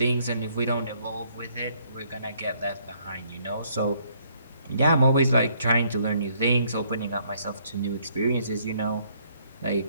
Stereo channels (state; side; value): inverted; both; correlation -0.67